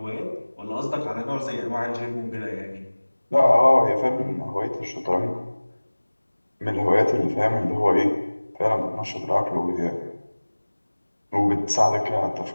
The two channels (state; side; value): inverted; both; correlation -1.00